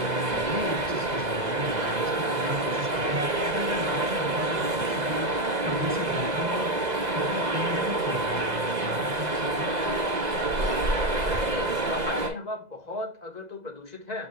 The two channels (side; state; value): left; late; 2.0 ms